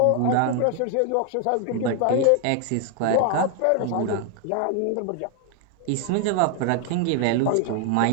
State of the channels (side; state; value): both; different; correlation 0.00